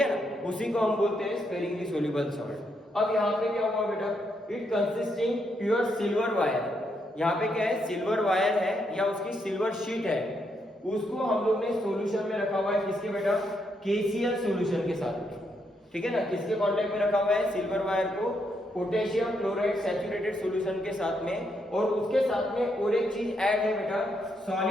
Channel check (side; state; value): both; normal; correlation 0.78